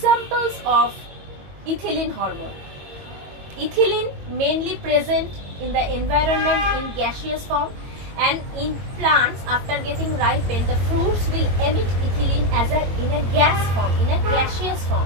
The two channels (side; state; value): left; late; 22 ms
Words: of ethylene hormone. Ethylene mainly present in the environment in gaseous form, and in plants after getting ripened, the fruits will emit ethylene in a gas form, in a gaseous